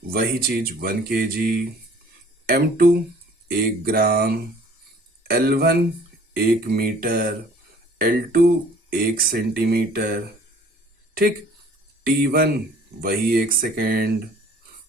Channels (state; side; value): normal; both; correlation 0.53